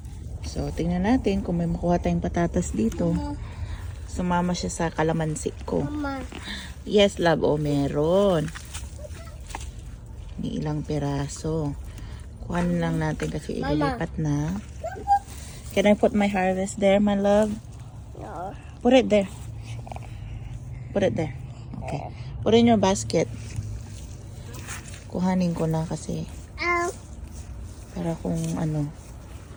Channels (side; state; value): both; identical; correlation 1.00